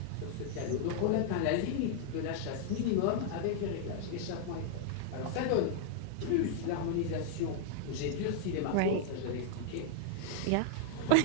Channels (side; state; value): both; different; correlation -0.01